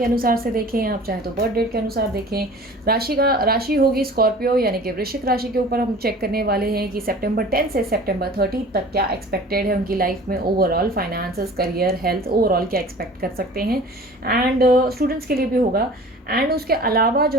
अनुसार से देखें, आप चाहे तो बर्थ डेट के अनुसार देखें। राशि होगी स्कॉर्पियो यानी कि वृश्चिक राशि के ऊपर हम चेक करने वाले हैं कि सितंबर 10 से सितंबर 30 तक क्या एक्सपेक्टेड है उनकी लाइफ में। Overall finances, career, health, overall क्या एक्सपेक्ट कर सकते हैं। एंड स्टूडेंट्स के लिए भी होगा। एंड उसके अलावा जो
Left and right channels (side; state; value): both; normal; correlation 0.43